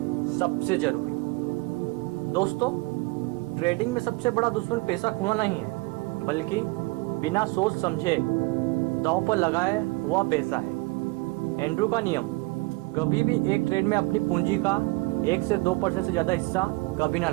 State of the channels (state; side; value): quieter; left; 24.6 dB